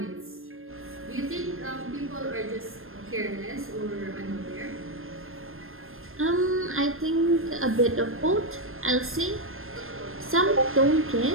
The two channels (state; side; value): late; left; 0.60 ms